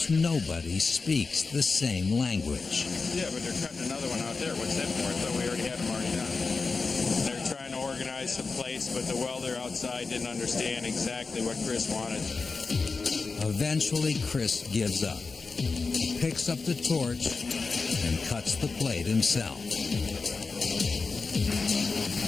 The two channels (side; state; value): right; quieter; 4.3 dB